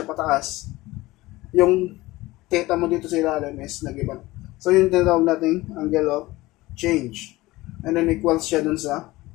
pataas. Yung theta mo dito sa ilalim is nag-iba. So yung tinatawag natin angle of change. And then equals siya dun sa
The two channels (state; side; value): quieter; right; 19.2 dB